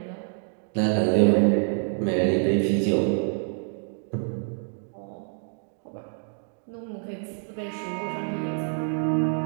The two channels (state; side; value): silent; left; 60 dB below the other